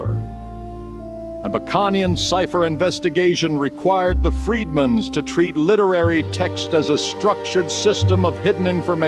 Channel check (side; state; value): both; identical; correlation 1.00